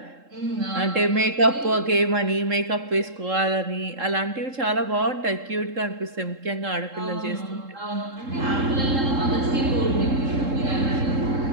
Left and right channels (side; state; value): left; late; 3.7 ms